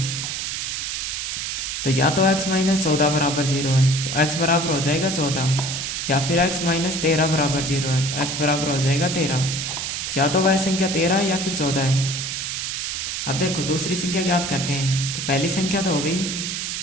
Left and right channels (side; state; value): right; noise; hiss, 3 dB below the sound